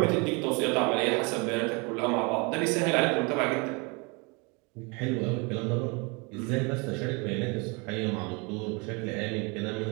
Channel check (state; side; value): quieter; left; 30.1 dB